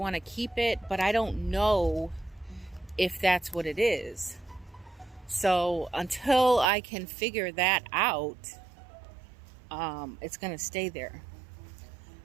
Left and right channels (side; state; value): left; drops out; at 6.7 s